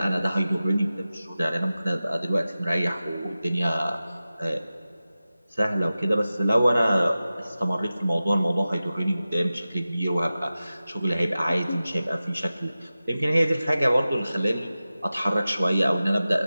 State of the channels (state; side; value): inverted; both; correlation -0.95